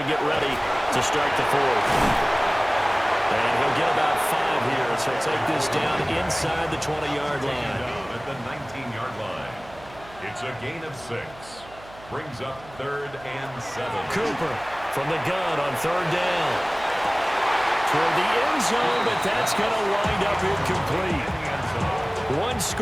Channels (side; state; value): right; noise; hum, 21 dB below the sound